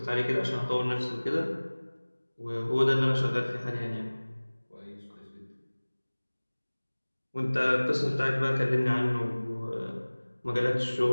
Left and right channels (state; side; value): inverted; both; correlation -1.00